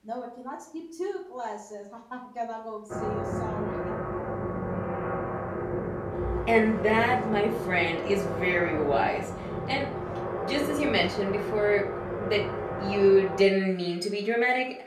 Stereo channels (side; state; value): both; identical; correlation 1.00